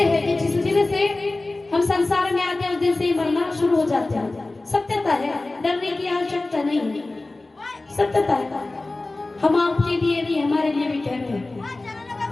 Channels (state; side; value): quieter; right; 3.1 dB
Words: है कि जिस दिन से हम संसार में आते हैं, उस दिन से ही मरना शुरू हो जाते हैं। सत्यता है, डरने की आवश्यकता नहीं है, सत्यता है। हम आपके लिए भी, हमारे लिए भी कह रहे हैं।